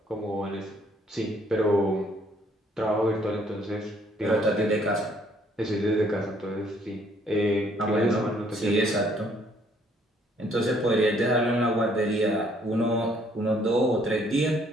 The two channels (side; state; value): both; normal; correlation 0.64